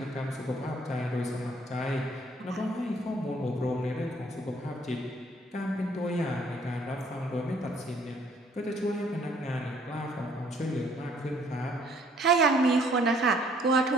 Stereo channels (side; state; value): both; normal; correlation 0.61